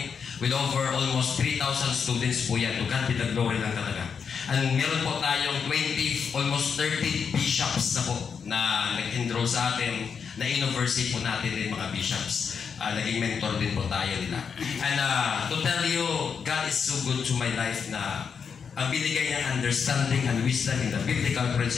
with over almost 3,000 students po yan. To God be the glory lang talaga. And meron po tayong 20, almost 30 bishops na po na nag-enroll sa atin, na university po natin din mga bishops. Naging mentor din po tayo nila. And to tell you, God is so good to my life na ang binigay niyang understanding and wisdom in the biblical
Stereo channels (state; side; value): quieter; right; 6.4 dB